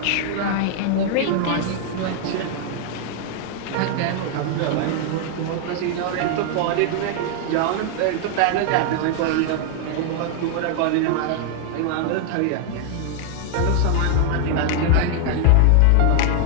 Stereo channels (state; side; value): different; both; correlation 0.00